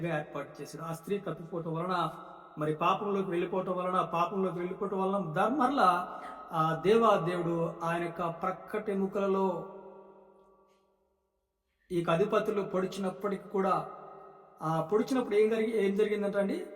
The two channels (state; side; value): identical; both; correlation 1.00